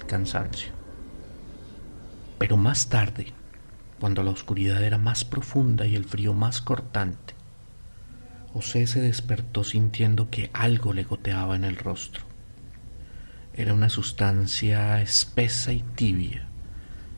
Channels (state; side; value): inverted; both; correlation -1.00